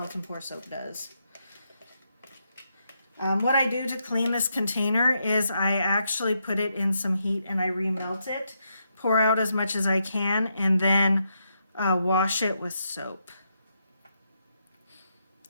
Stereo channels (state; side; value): inverted; both; correlation -0.81